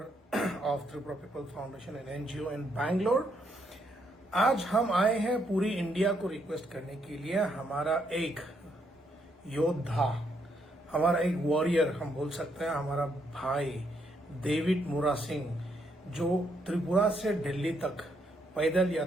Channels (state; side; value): normal; both; correlation 0.75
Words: of Tripura people foundation and NGO in Bangalore. आज हम आए हैं पूरी इंडिया को रिक्वेस्ट करने के लिए। हमारा एक योद्धा, हमारा एक वॉरियर हम बोल सकते हैं, हमारा भाई डेविड मुरा सिंह, जो त्रिपुरा से दिल्ली तक पैदल